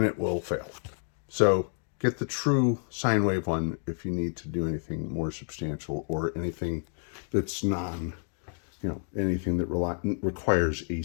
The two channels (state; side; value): silent; right; 56 dB below the other